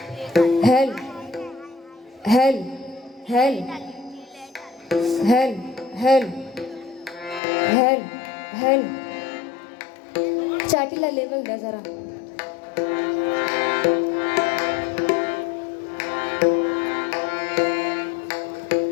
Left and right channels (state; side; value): drops out; right; at 7.4 s